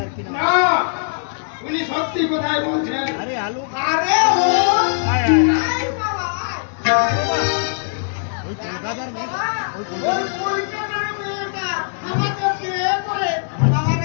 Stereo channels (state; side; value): silent; right; digital silence